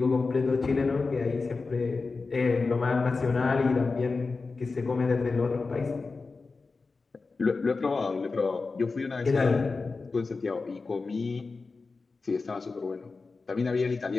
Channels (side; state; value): right; quieter; 4.1 dB